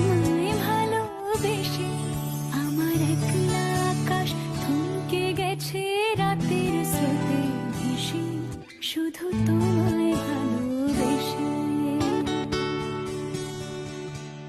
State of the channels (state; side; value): identical; both; correlation 1.00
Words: ভালোবেসে। আমার একলা আকাশ থমকে গেছে রাতের স্রোতে ভেসে, শুধু তোমায় ভালোবেসে।